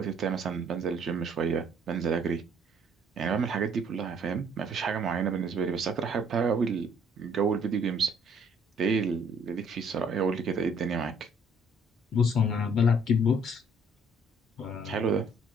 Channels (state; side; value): normal; both; correlation 0.62